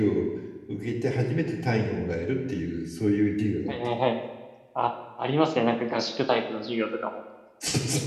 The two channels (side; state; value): both; identical; correlation 1.00